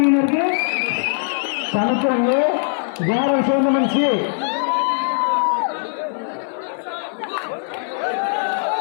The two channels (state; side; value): silent; right; 58 dB below the other